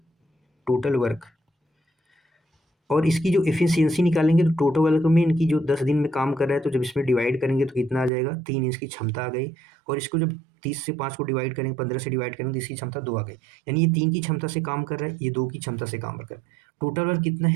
टोटल वर्क। और इसकी जो एफिशिएंसी निकालेंगे तो टोटल वर्क में इनकी जो 10 दिन में काम कर रहा है, तो जब इसमें डिवाइड करेंगे तो कितना आ जाएगा, 3 इसकी क्षमता आ गई। और इसको जब 30 से 5 को डिवाइड करेंगे, 15 से डिवाइड करेंगे तो इसकी क्षमता 2 आ गई। यानी ये 3 की क्षमता से काम कर रहा है, ये 2 की क्षमता से काम कर रहा है। टोटल वर्क कितना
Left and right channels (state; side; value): drops out; left; at 8.1 s